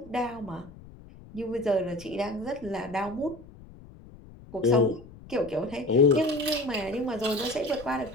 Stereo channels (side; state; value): left; noise; rumble, 19 dB below the sound